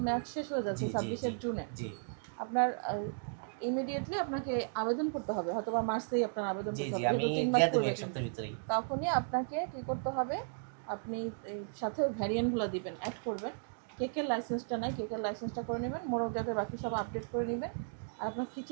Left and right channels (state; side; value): silent; left; digital silence